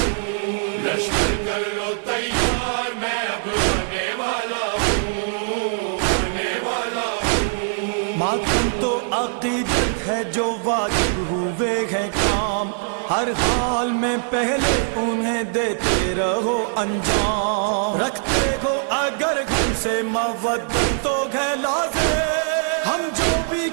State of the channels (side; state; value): left; silent; digital silence